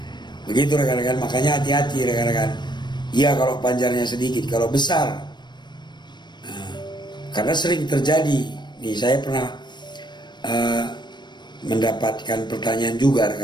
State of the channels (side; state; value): right; late; 0.22 ms